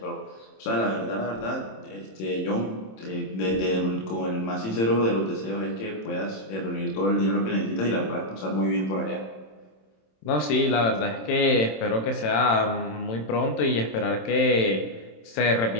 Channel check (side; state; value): right; late; 27 ms